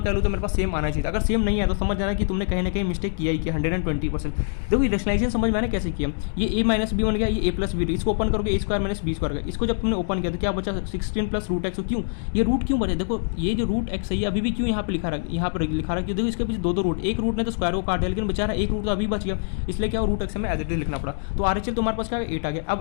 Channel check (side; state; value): right; silent; digital silence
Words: वैल्यू तो मेरे पास सेम आना चाहिए। अगर सेम नहीं है तो समझ जाना कि तुमने कहीं ना कहीं मिस्टेक किया ही किया 120%। देखो रेशनलाइजेशन समझ में आना कैसे किया, ये a माइनस बी बन गया, ये a प्लस बी, इसको ओपन करोगे a square minus b square का। इसको जब तुमने ओपन किया तो क्या बचा 16 प्लस रूट एक्स। क्यों ये रूट क्यों बचे, देखो ये जो रूट एक्स है ये अभी भी क्यों यहाँ पे लिखा रहा, यहाँ पर लिखा रहा, क्यों देखो इसके पीछे दो रूट, एक रूट ने तो स्क्वायर को काट दिया लेकिन बेचारा एक रूट तो अभी बच गया, इसलिए क्या रूट एक्स में एज इट इज लिखना पड़ा। तो RHL तुम्हारे पास क्या 8 आ गया।